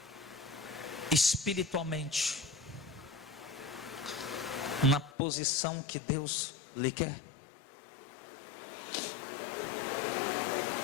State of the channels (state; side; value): drops out; right; at 5.1 s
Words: espiritualmente na posição que Deus lhe quer?